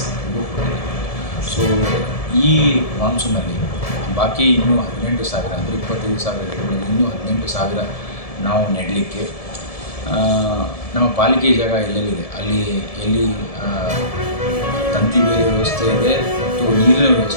ಕೊಟ್ಟಿದ್ದೀವಿ. ಸೊ ಈ ಮಾನ್ಸೂನಲ್ಲಿ ಬಾಕಿ ಇನ್ನೂ 18,000 ಅಂದರೆ 25,000 ಗಿಡಗಳಲ್ಲಿ ಇನ್ನೂ 18,000 ನಾವು ನೆಡಲಿಕ್ಕೆ ನಮ್ಮ ಪಾಲಿಕೆ ಜಾಗ ಎಲ್ಲೆಲ್ಲಿದೆ ಅಲ್ಲಿ ಎಲ್ಲಿ ತಂತಿ ಬೇಲಿ ವ್ಯವಸ್ಥೆ ಇದೆ ಮತ್ತು ನೀರಿನ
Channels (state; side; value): late; right; 1.7 ms